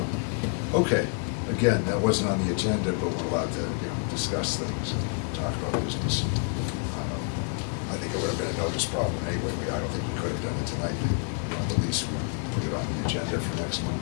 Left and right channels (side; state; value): right; quieter; 37.9 dB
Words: up. Okay, again, that wasn't on the agenda, but we're allowed to, discuss things and talk about business. I think it would have been a notice problem anyway. I don't think we could have done it tonight. At least we put it on the agenda for next